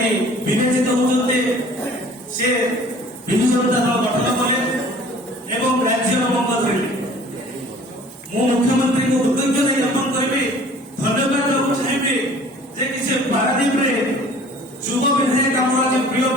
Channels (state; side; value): normal; both; correlation 0.49